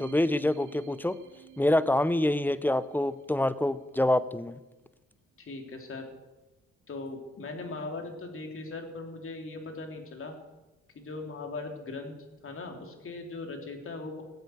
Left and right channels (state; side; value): normal; both; correlation 0.85